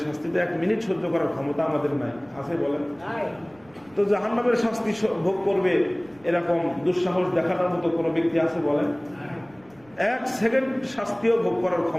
শাস্তিতে 1 মিনিট সহ্য করার ক্ষমতা আমাদের নাই, আছে বলেন? তো জাহান্নামের শাস্তি ভোগ করবে এরকম দুঃসাহস দেখানোর মতো কোনো ব্যক্তি আছে বলেন? 1 সেকেন্ড শাস্তিও ভোগ করার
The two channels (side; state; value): right; noise; rumble, 28 dB below the sound